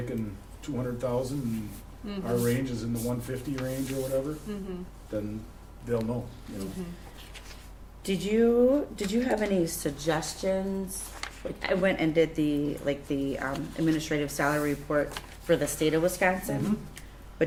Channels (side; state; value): both; identical; correlation 1.00